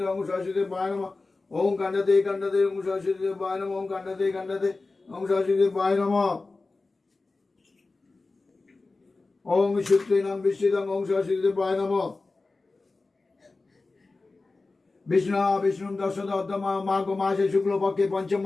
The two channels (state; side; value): quieter; right; 3.6 dB